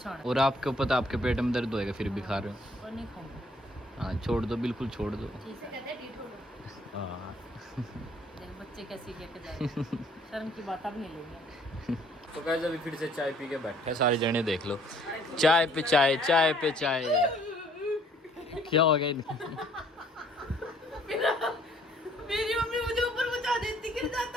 और आपको पता आपके पेट में दर्द होएगा, फिर भी खा रहे हो। और नहीं खाऊंगा। हाँ छोड़ दो, बिल्कुल छोड़ दो। ठीक है, हाँ। देख बच्चे कैसे लेके जाए, शर्म की बात अब नहीं लेंगे। तो गाइस अभी फिर से चाय पी के बैठे हैं सारे जने, देख लो चाय पे चाय, चाय पे चाय। क्या हो गया इनको? मेरी मम्मी मुझे ऊपर पहुंचा देती, गिर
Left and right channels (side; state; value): both; normal; correlation 0.61